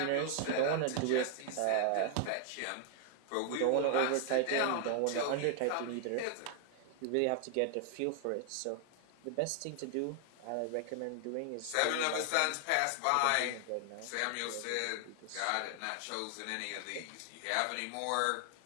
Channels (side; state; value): both; different; correlation 0.00